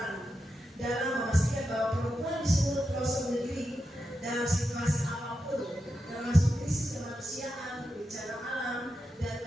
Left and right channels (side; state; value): both; normal; correlation 0.88